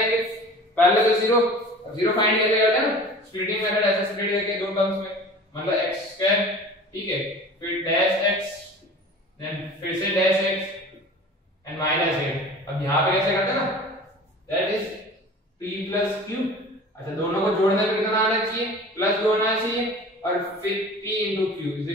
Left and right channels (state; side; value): normal; both; correlation 0.41